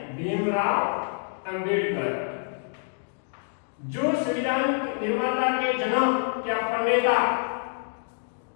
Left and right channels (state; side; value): silent; right; digital silence